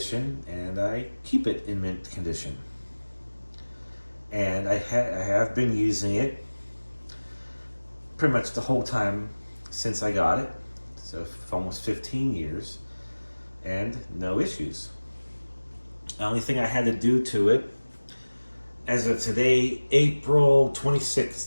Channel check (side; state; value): both; inverted; correlation -1.00